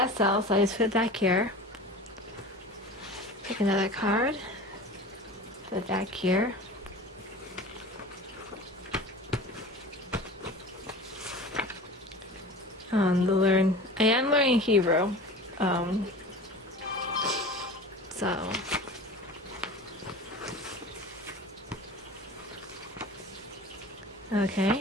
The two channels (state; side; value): normal; both; correlation 0.37